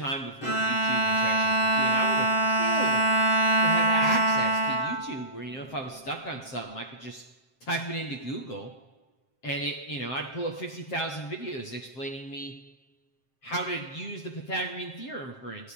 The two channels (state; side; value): late; right; 7.6 ms